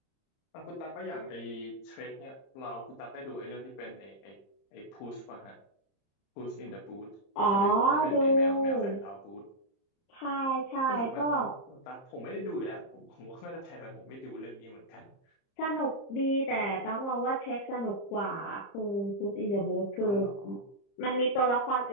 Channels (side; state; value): right; late; 30 ms